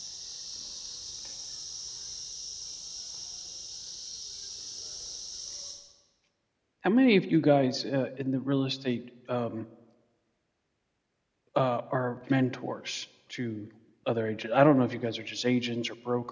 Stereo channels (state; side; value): identical; both; correlation 1.00